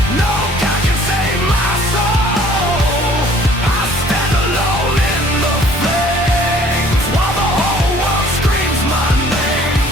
no God can save my soul. I stand alone in the flames while the whole world screams my name.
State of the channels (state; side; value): normal; both; correlation 0.55